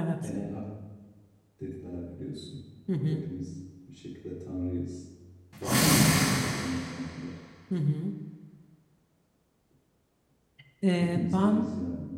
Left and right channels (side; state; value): both; identical; correlation 1.00